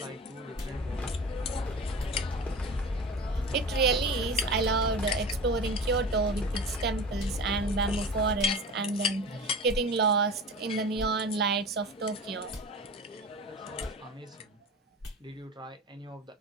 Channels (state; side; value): normal; both; correlation 0.32